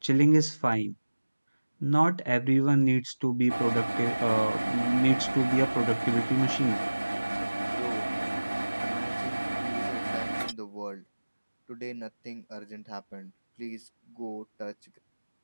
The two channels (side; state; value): both; inverted; correlation -1.00